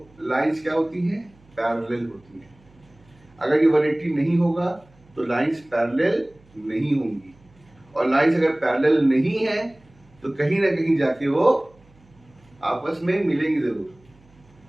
लाइंस क्या होती हैं? पैरेलल होती हैं। अगर ये 180 नहीं होगा तो लाइंस पैरेलल नहीं होंगी, और लाइंस अगर पैरेलल नहीं है तो कहीं ना कहीं जाके वो आपस में मिलेंगी जरूर,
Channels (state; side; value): noise; right; hum, 30 dB below the sound